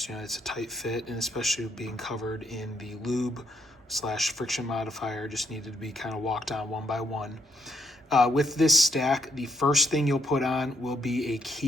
it's a tight fit, and especially being covered in the lube / friction modifier, just needed to be kind of walked on one by one. With this stack, the first thing you'll put on will be a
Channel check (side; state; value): both; normal; correlation 0.73